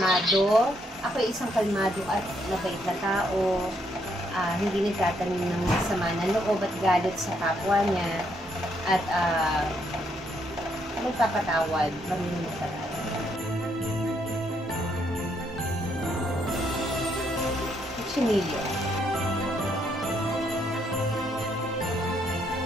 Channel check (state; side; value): normal; both; correlation 0.73